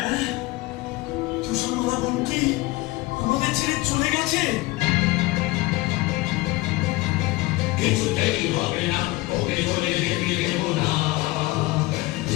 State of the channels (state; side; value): quieter; right; 20.0 dB